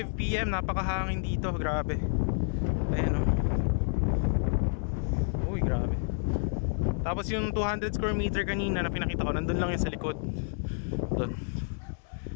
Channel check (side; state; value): right; silent; 58 dB below the other